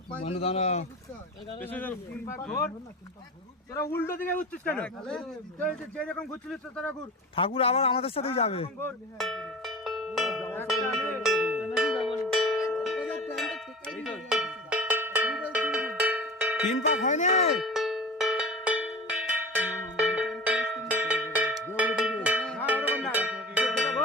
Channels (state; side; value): normal; both; correlation 0.35